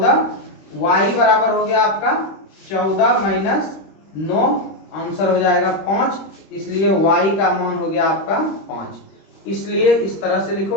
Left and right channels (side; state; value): right; late; 26 ms